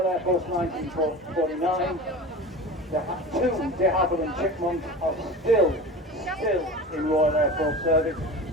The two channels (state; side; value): normal; both; correlation 0.33